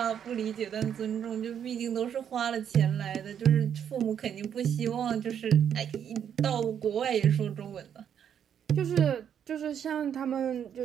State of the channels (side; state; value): left; quieter; 8.7 dB